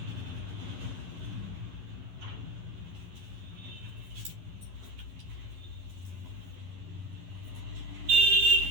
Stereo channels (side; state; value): left; late; 11 ms